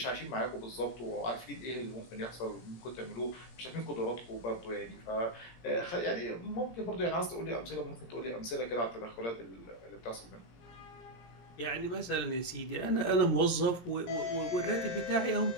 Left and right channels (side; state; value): right; late; 17 ms